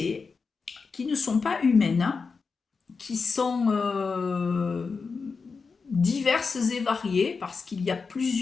qui ne sont pas humaines, qui sont diverses et variées, parce qu'il y a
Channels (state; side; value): quieter; right; 4.9 dB